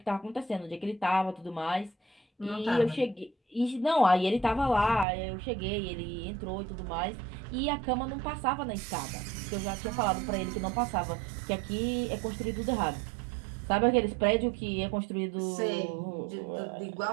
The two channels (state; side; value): drops out; left; at 5.1 s